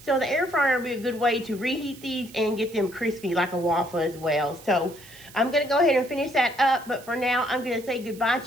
So the air fryer would be a good way to reheat these and get them crispy like a waffle as well. So I'm going to go ahead and finish that up. But for now, I'm going to say goodbye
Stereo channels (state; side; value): noise; right; hiss, 20 dB below the sound